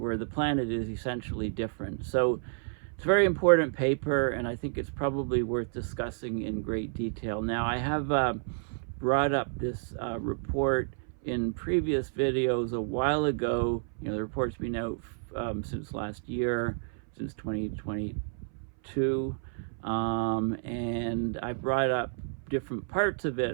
the planet is essentially different. So it's a very important paper, and I think it's probably worth discussing in great detail. Now, I have brought up this report in previous videos a while ago. The report's been out since last year, since 2022, and I brought up different parts of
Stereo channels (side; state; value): left; silent; 58 dB below the other